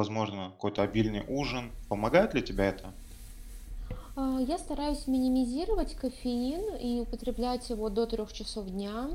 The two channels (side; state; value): both; identical; correlation 1.00